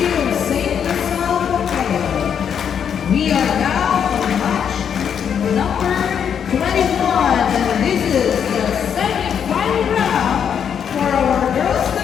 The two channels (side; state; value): right; quieter; 7.9 dB